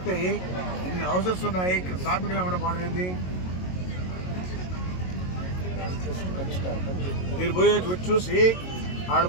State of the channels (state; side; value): late; right; 22 ms